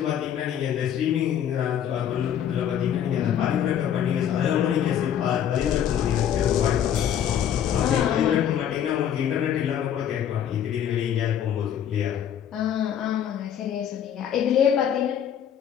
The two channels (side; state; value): right; quieter; 9.5 dB